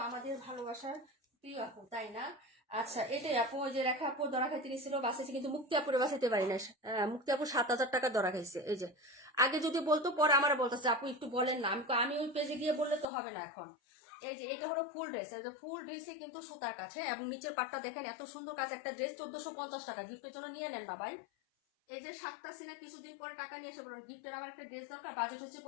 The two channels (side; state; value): right; drops out; at 13.1 s